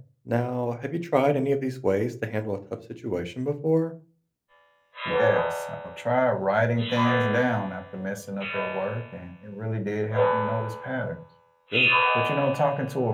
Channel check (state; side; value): identical; both; correlation 1.00